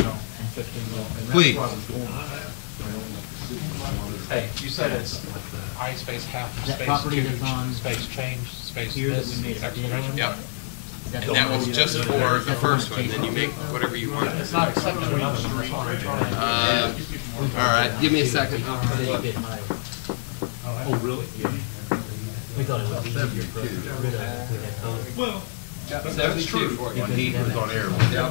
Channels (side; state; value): right; silent; digital silence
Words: that? 15 minutes. Please. Hey, you said it's I space half, That space property two, that's on space change, space Here that this, we made a bid exclamation. on? Yep, Is that and the that one was you- just is for that the first one, Chase then you make Hospital? whatever you want. It's not accepting another All right, give me a second. It's a little bit higher. Oh, really? We thought it would be easier for us to get rid of it if we had both. Well, That's true. When he was on air.